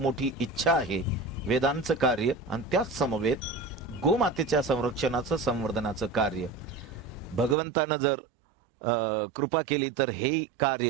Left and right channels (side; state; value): left; drops out; at 7.6 s